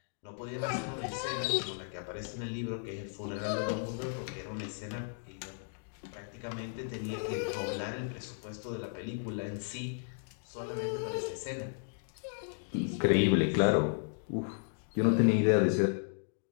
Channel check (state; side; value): silent; right; digital silence